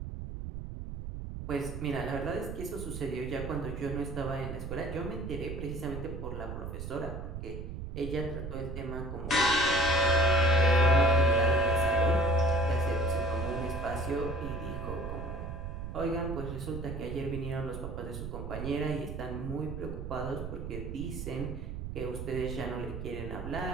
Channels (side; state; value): right; noise; rumble, 7 dB below the sound